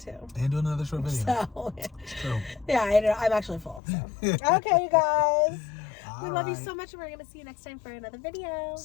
So, it's true. Yeah, I'm actually full. So. Okay, you guys. We love you so much, and we're going to see you next time for another video.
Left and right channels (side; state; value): right; drops out; at 3.8 s